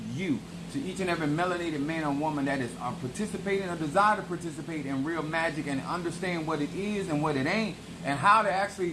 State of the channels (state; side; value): identical; both; correlation 1.00